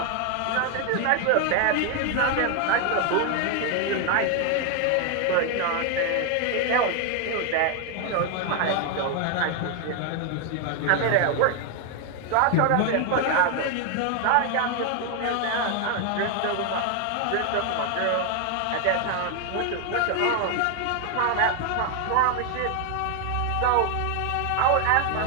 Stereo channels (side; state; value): both; different; correlation 0.01